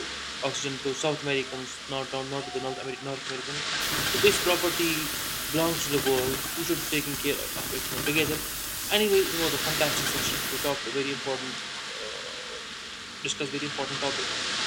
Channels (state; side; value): identical; both; correlation 1.00